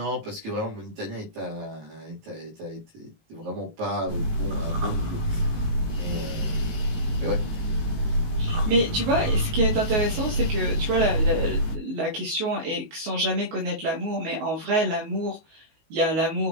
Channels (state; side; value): late; left; 19 ms